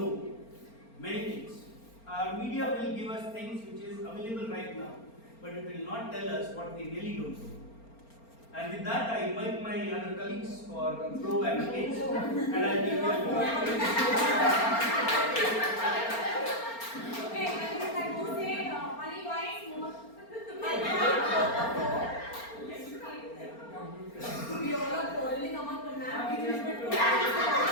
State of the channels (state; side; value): late; right; 4.3 ms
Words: many things. Our media will give us things which is available right now, but it will not tell us what we really don't know. And with that, I invite my other colleagues for pro and against, and I give them Okay, I would like to say only points more. We all are quarreling among the map.